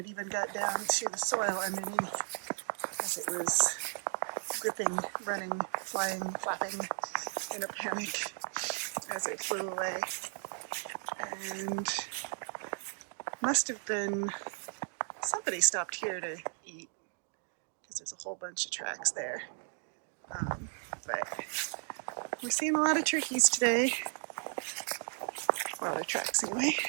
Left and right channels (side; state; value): left; silent; 54 dB below the other